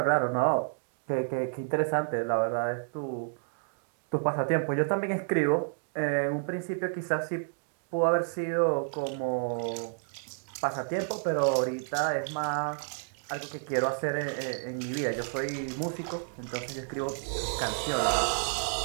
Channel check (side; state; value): left; silent; digital silence